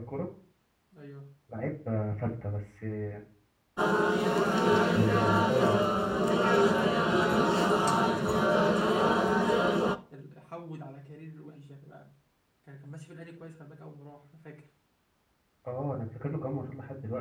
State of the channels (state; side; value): identical; both; correlation 1.00